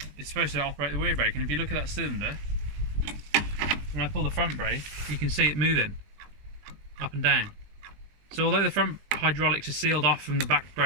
it's supposed to operate the rear brake, and if you look at that cylinder, when I pull the front brake, you can see it moving up and down. So although the front hydraulics are sealed off from the back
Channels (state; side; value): late; left; 20 ms